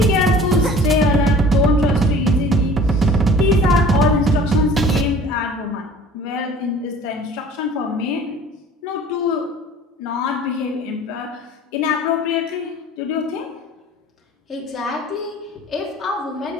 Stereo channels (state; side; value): normal; both; correlation 0.46